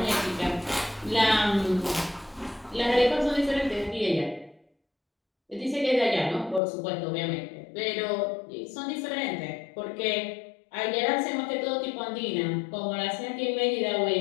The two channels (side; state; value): right; drops out; at 6.6 s